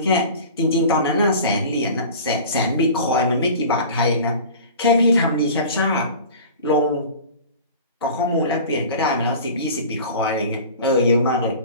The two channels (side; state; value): both; inverted; correlation -0.39